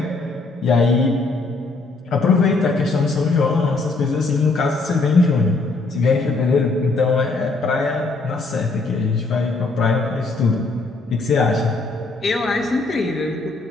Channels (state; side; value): quieter; right; 3.5 dB